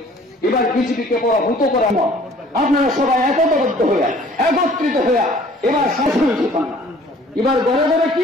এবার বিজেপিকে পরাভূত করা নয়, আপনারা সবাই একতাবদ্ধ হইয়া একত্রিত হইয়া এবার সংশোধিত পান। এবার ঘরে ঘরে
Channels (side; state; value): both; normal; correlation 0.53